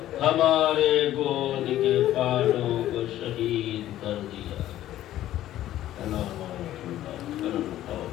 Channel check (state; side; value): quieter; right; 13.3 dB